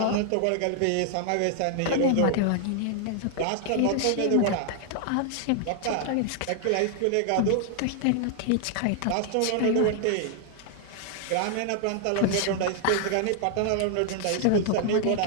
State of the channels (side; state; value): both; different; correlation 0.00